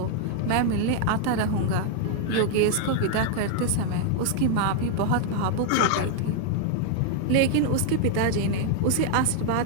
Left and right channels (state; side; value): different; both; correlation 0.00